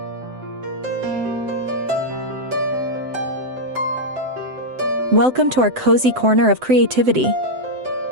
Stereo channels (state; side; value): late; left; 7.8 ms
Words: Welcome to our cozy corner of creativity.